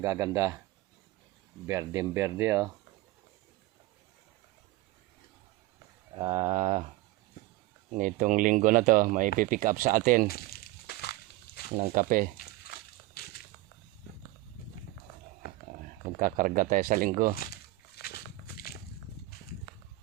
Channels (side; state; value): left; quieter; 17.8 dB